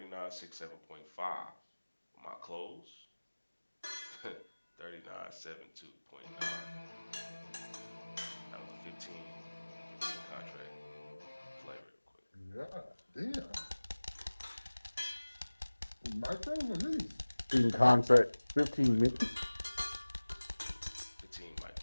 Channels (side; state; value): both; inverted; correlation -1.00